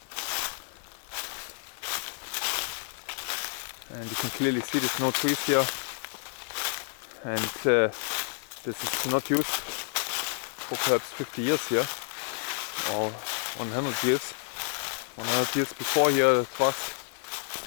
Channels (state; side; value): silent; right; 58 dB below the other